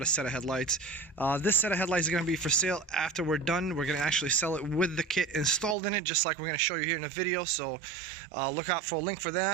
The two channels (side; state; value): left; drops out; at 5.8 s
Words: a set of headlights. This set of headlights is going to be for sale after we're done. We're going to actually sell it with the kit installed in it, just like we're going to show you here in the video, so look out for a link for